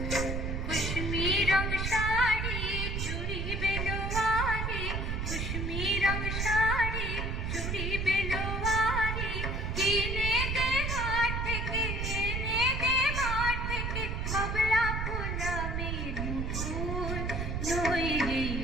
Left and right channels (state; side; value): noise; right; rumble, 1 dB below the sound